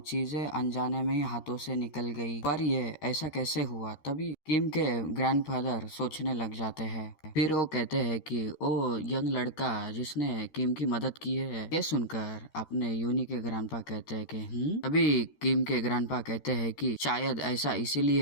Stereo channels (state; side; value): late; right; 13 ms